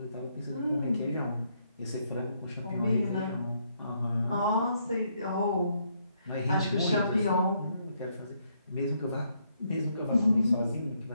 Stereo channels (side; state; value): both; inverted; correlation -0.74